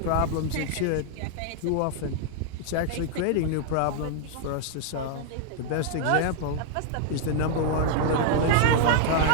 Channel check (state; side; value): different; both; correlation 0.00